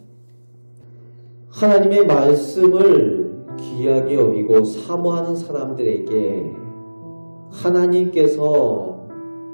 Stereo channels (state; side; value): inverted; both; correlation -1.00